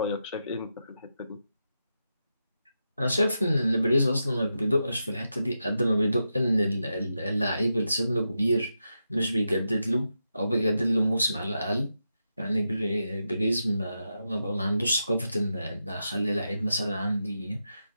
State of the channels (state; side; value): inverted; both; correlation -0.87